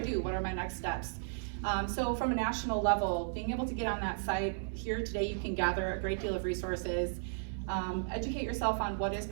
What are my next steps? So from a national level, being able to get on that site, here today you can gather a great deal of resources. Educate yourself on what is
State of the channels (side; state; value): left; silent; digital silence